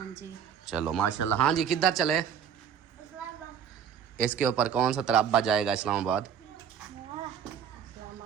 जी। चलो माशाल्लाह। हाँ जी, किधर चले? इसके ऊपर कौन सा तराबा जाएगा? इस्लामाबाद।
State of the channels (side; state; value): left; quieter; 8.2 dB